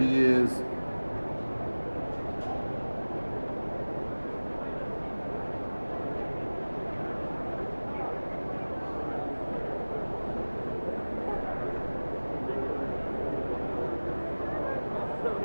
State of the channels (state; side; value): inverted; both; correlation -1.00